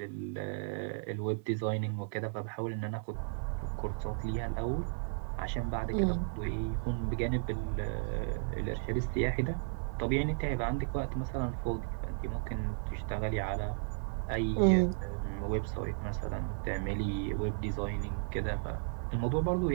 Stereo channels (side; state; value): left; silent; 55 dB below the other